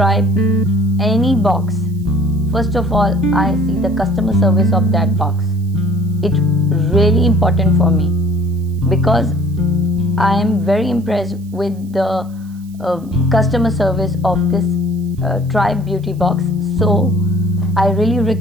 any box, first of all I see the customer service of that box. It's really important for me because I am very impressed with the customer service of this Tribe Beauty box. So I really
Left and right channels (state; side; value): noise; right; hiss, 29 dB below the sound